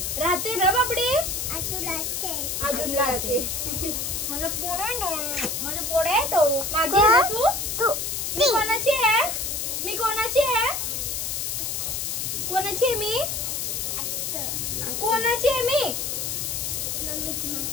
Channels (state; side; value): noise; left; hiss, 2 dB below the sound